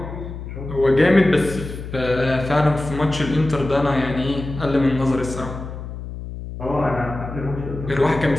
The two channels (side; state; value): left; noise; hum, 9 dB below the sound